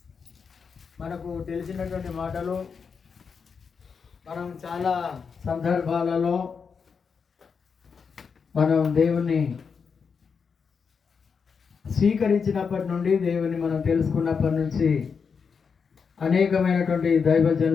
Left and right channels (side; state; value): right; quieter; 5.9 dB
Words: మనకు తెలిసినటువంటి మాటలు మనం చాలా సందర్భాలలో మనం దేవుని స్వీకరించినప్పటి నుండి, దేవుని మనం తెలుసుకున్నప్పటి నుంచి అనేకమైనటువంటి